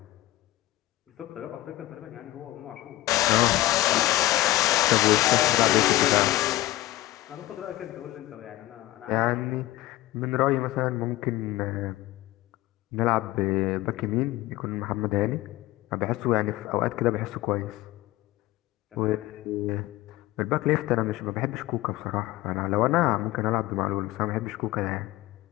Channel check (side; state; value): right; quieter; 16.7 dB